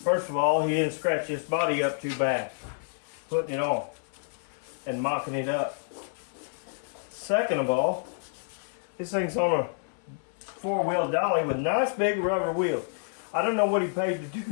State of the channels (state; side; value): silent; right; 59 dB below the other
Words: First of all, he didn't scratch his body up too bad, putting it on and mopping it up. Second of all, this thing's on a 4-wheel dolly with nice big rubber wheels. I don't know what he paid